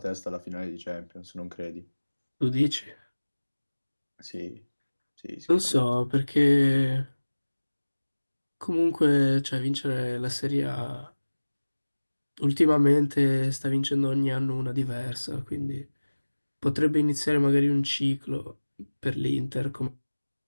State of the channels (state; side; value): inverted; both; correlation -1.00